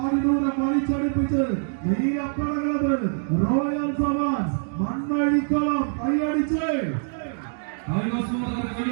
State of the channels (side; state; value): left; silent; digital silence